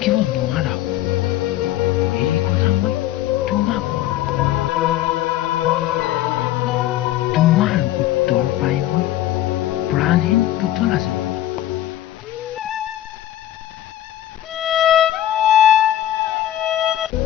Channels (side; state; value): right; quieter; 13.3 dB